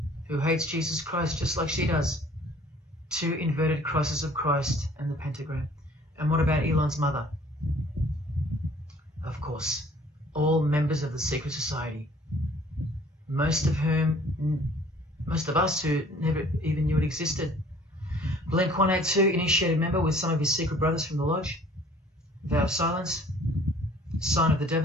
who hates Jesus Christ just like she does. 2 inverted crosses of Christ and the pentagram. And what about Elon's mother? Of course, all members of the secret society. Most of us who never even knew it existed. Blink 182, initiated member with some of his secret brothers from the lodge. Vow of silence. Sign of the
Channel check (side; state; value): both; normal; correlation 0.54